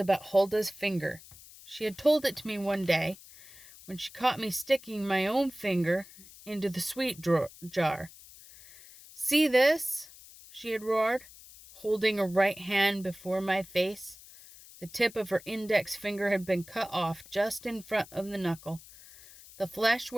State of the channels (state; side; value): noise; left; hiss, 20 dB below the sound